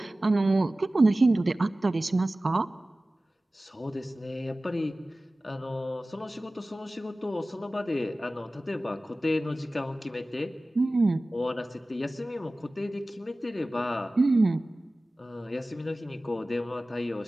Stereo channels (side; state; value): both; normal; correlation 0.97